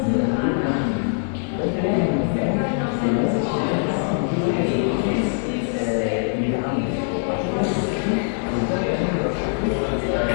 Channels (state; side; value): silent; right; 61 dB below the other